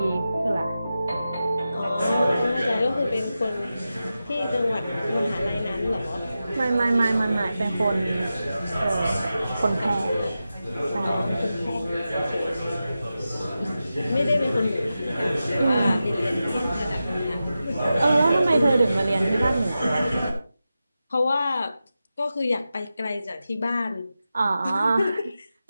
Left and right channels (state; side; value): inverted; both; correlation -0.92